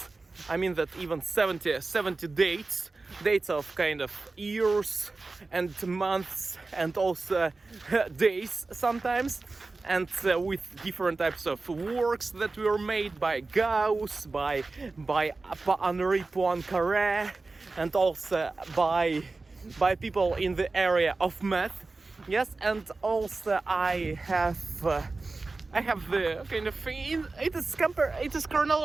I mean that even 70 dates dates of kind of years and months and also days sometimes, and with different types of works that were made by Gauss, by Henri Poincaré, and also by people in the area of math. Yes, and also I have the kind of it is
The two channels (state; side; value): quieter; left; 3.6 dB